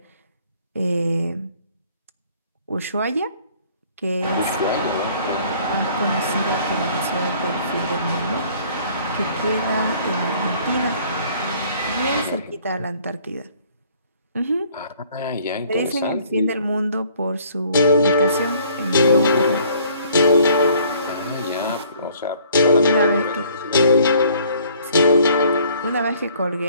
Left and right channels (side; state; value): both; inverted; correlation -0.58